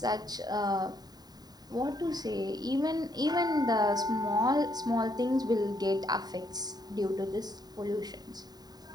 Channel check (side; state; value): left; late; 0.19 ms